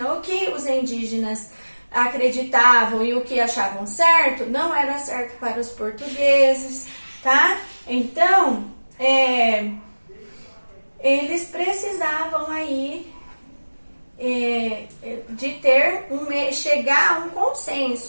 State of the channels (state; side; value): inverted; both; correlation -1.00